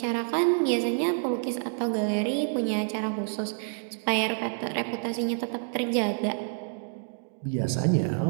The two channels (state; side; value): silent; left; digital silence